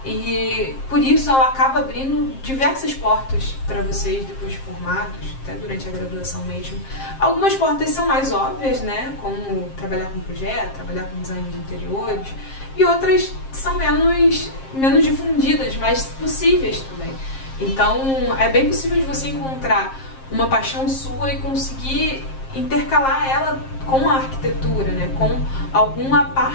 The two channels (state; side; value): late; right; 7.5 ms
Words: E por isso ela acaba abrindo diversas portas para vocês depois de formados, até durante a graduação mesmo. Algumas portas são mais óbvias, né, como trabalhar com projeto, trabalhar com design de interiores, e outras são menos difundidas, mas possíveis também. Então é bem possível de você encontrar uma paixão sua e conseguir intercalar ela com a arquitetura, né, com alguma